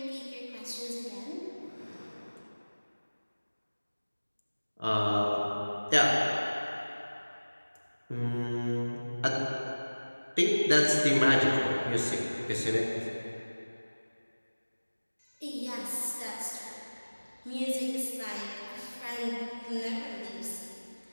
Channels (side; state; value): both; inverted; correlation -1.00